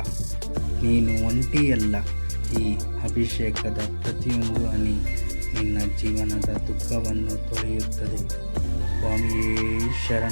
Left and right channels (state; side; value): inverted; both; correlation -1.00